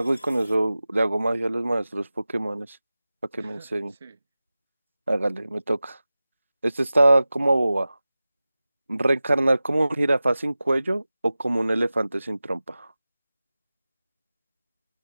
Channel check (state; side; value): inverted; both; correlation -0.96